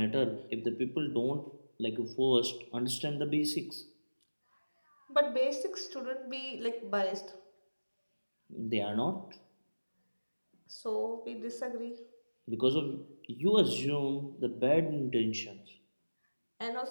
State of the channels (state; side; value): inverted; both; correlation -1.00